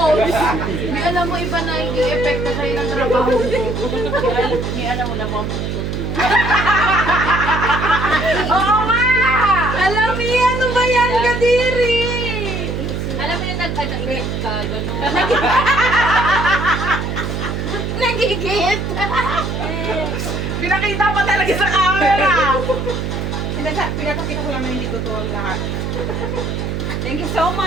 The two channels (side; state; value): right; noise; hum, 3 dB below the sound